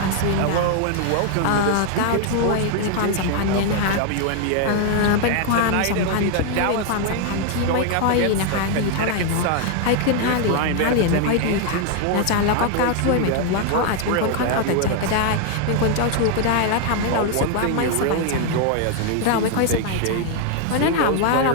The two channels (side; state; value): both; different; correlation 0.00